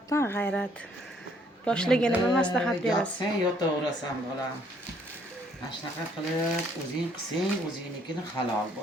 g'ayrat. Yoshlarga nima maslahat berasiz? Sen yotaverasan bolam. Mana shunaqa qilib o'zing qilsang, o'zingnikini halol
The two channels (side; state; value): both; normal; correlation 0.65